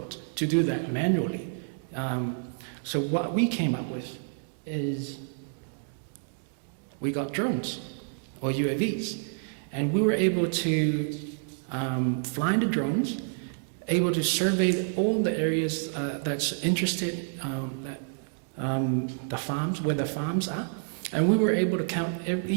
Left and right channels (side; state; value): left; silent; digital silence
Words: to do that manually. So what we came up with is we got drones or UAVs, and we were able to fly the drones, able to survey all the areas that's interested, the farms, where the farms are, and we were able to count